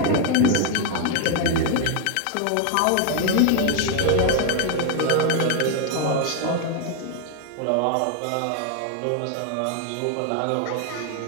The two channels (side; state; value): both; different; correlation 0.00